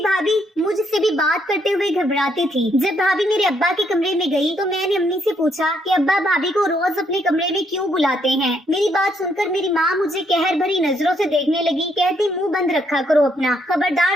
भाभी मुझसे भी बात करते हुए घबराती थी। जब भाभी मेरे अब्बा के कमरे में गई तो मैंने अम्मी से पूछा कि अब्बा भाभी को रोज अपने कमरे में क्यों बुलाते हैं। मेरी बात सुनकर मेरी माँ मुझे कहर भरी नजरों से देखने लगी। कहती, मुंह बंद रखा करो अपना,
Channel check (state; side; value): normal; both; correlation 0.73